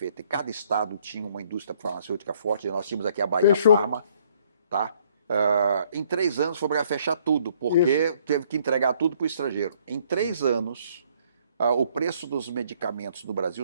e cada estado tinha uma indústria farmacêutica forte, nós tínhamos aqui a Bahia Fechou. Farma, tá? Em 3 anos foi obrigado a fechar tudo, porque teve que entregar tudo para o estrangeiro. Em 3 anos, o preço dos medicamentos no Brasil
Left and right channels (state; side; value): inverted; both; correlation -0.64